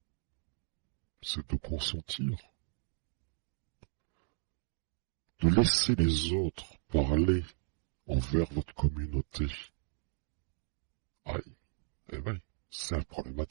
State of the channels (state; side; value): silent; left; 54 dB below the other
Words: c'est de consentir, de laisser les autres parler envers votre communauté. Aïe, eh ben, c'est